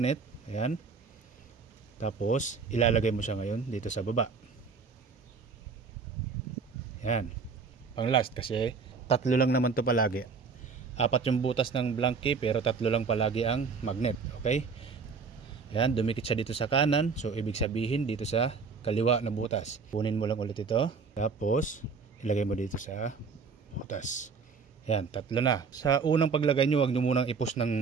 Ayan, tapos ilalagay mo siya ngayon dito sa baba. Yan. Pang last kasi tatlo lang naman to palagi. Apat yung butas ng blank key pero tatlo lang palagi ang magnet. Okay? Yan. Dumikit siya dito sa kanan. So ibig sabihin dito sa kaliwa na butas. Kunin mo lang ulit ito. Tapos ilagay mo dito sa butas. Yan. Tatlo na. Sa unang paglagay nyo, huwag nyo munang i-push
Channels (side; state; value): left; quieter; 5.2 dB